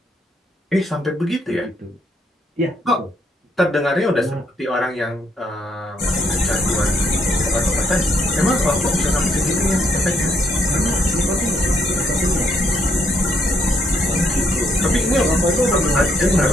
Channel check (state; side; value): normal; both; correlation 0.72